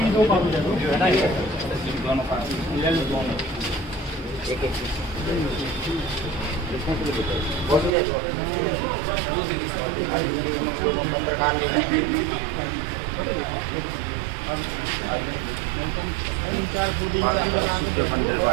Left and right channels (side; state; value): left; drops out; at 7.9 s